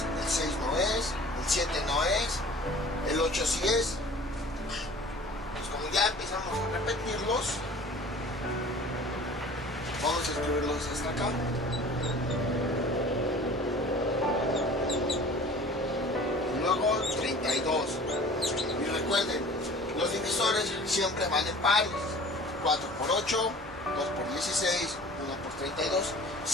el 6 no es, el 7 no es, el 8 sí es. Como ya empezamos a repetirlos, vamos a escribirlos hasta acá. Y luego 32. Y recuerden, los divisores siempre van en pares. 4 por 8, 2 por 16, 1 por 32.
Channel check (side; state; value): both; normal; correlation 0.45